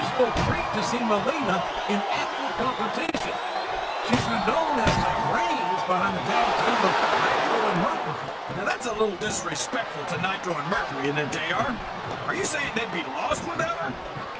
treat to see Melina in active competition. She's been known as the brains behind the tag team of Nitro and Mercury. Now that's a little disrespectful to Nitro and Mercury, isn't it, JR? Are you saying they'd be lost without her?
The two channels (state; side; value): identical; both; correlation 1.00